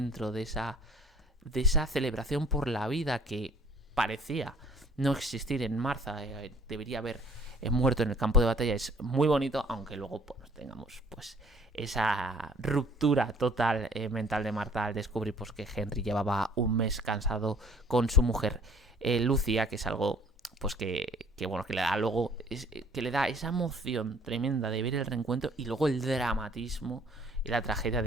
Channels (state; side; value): normal; both; correlation 0.55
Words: de esa celebración por la vida que parecía no existir en Martha, debería haber muerto en el campo de batalla, es muy bonito, aunque luego pues, tengamos pues esa ruptura total mental de Martha al descubrir pues, que Henry llevaba un mes cansado con su mujer Lucia, que es algo pues que bueno, que le da luego que le da esa emoción tremenda de ver el reencuentro, y luego el dramatismo y la tragedia